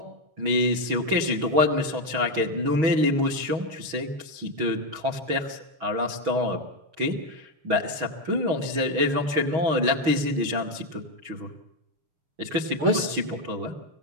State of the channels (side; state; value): left; late; 6.2 ms